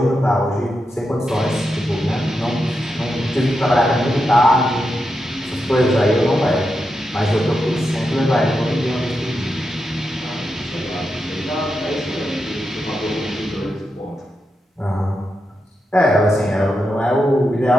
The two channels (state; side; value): normal; both; correlation 0.87